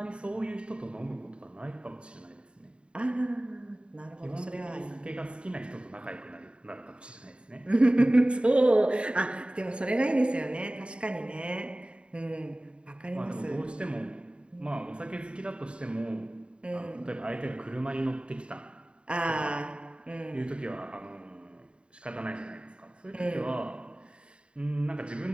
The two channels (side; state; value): left; late; 0.054 ms